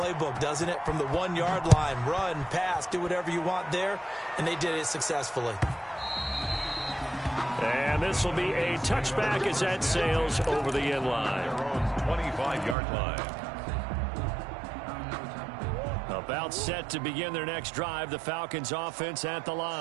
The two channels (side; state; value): left; drops out; at 12.8 s